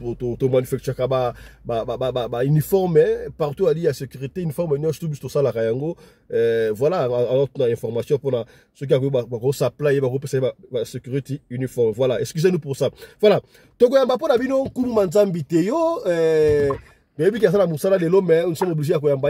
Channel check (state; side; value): identical; both; correlation 1.00